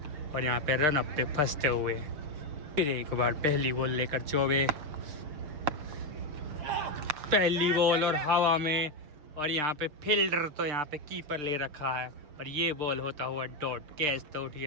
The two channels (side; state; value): left; late; 6.7 ms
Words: और यहाँ पे रन अप पे फंसते हुए। फिर एक बार पहली बॉल लेकर चौबे, पहली बॉल और हवा में, और यहाँ पे फील्डर तो यहाँ पे कीपर ले रखा है, और ये बॉल होता हुआ डॉट। कैच तो उठ